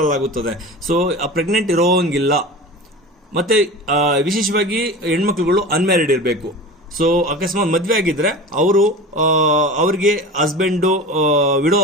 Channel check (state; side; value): normal; both; correlation 0.32